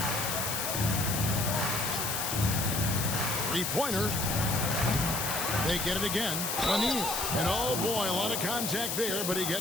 Three-pointer. They get it again. Lanier. And oh boy, a lot of contact there, but he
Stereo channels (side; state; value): left; noise; hiss, 1 dB below the sound